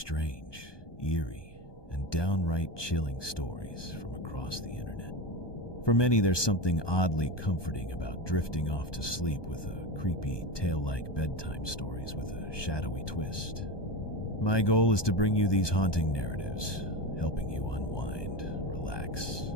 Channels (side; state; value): right; late; 1.2 ms